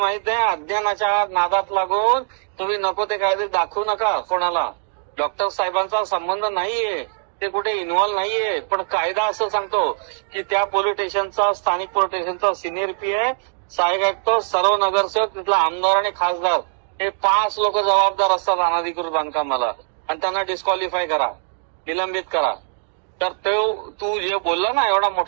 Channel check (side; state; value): left; silent; digital silence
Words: आहे? अज्ञानाच्या नादात लागून तुम्ही नको ते कायदे दाखवू नका कोणाला. डॉक्टर साहेबांचा संबंध नाहीये, ते कुठे इन्व्हॉल्व्ह नाहीये. पण कायदा असं सांगतो की त्या पोलीस स्टेशनचा, स्थानिक पोलीस स्टेशनचा सिनियर पीआय, सहाय्यक आयुक्त, सर्व नगरसेवक, तिथला आमदार आणि खासदार हे 5 लोक जबाबदार असतात अनधिकृत बांधकामाला, आणि त्यांना डिस्क्वालिफाय करा, निलंबित करा. तर तू जे बोलला ना एवढा